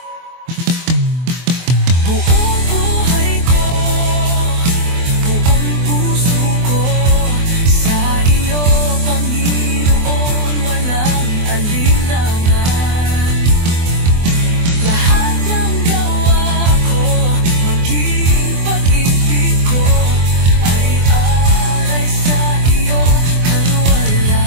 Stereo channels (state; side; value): late; left; 24 ms